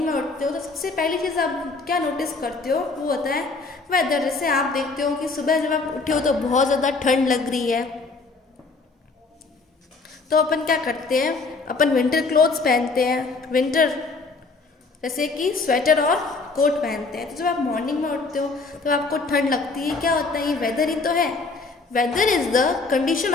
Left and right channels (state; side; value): quieter; right; 3.9 dB